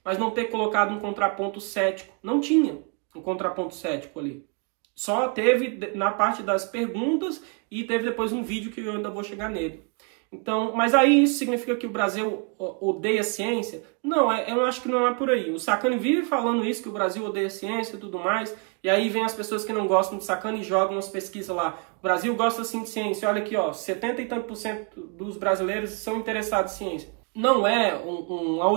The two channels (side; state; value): left; quieter; 35.6 dB